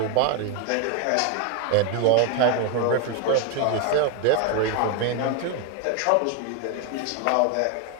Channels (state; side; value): different; both; correlation 0.01